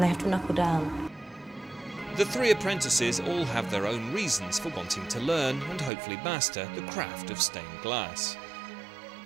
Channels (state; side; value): drops out; left; at 5.9 s